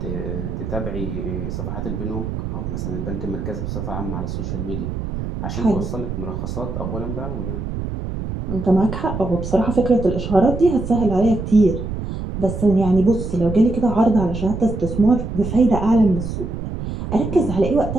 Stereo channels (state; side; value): noise; right; rumble, 5 dB below the sound